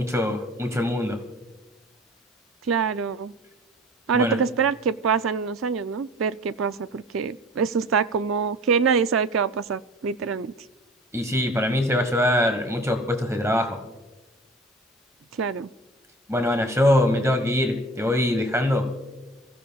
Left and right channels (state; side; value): normal; both; correlation 0.43